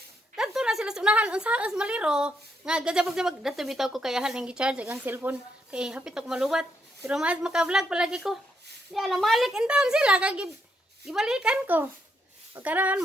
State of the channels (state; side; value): normal; both; correlation 0.77